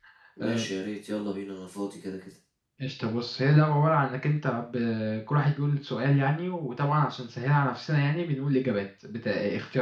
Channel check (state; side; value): identical; both; correlation 1.00